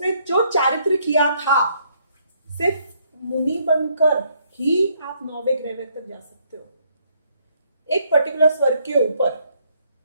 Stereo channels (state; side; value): inverted; both; correlation -0.69